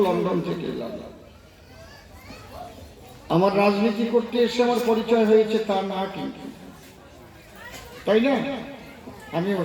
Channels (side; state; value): both; identical; correlation 1.00